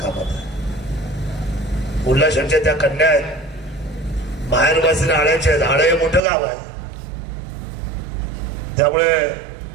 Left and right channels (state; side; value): drops out; left; at 6.2 s